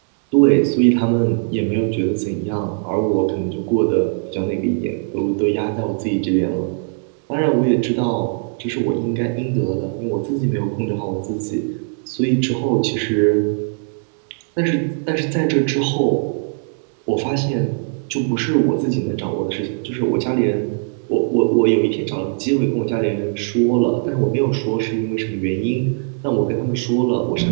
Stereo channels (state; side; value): silent; left; 66 dB below the other